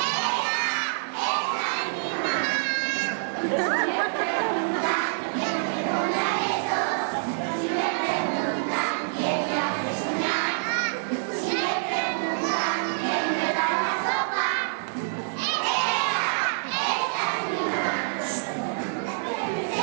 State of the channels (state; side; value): silent; left; digital silence